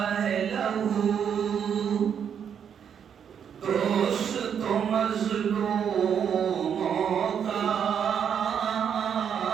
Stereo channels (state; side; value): quieter; left; 8.0 dB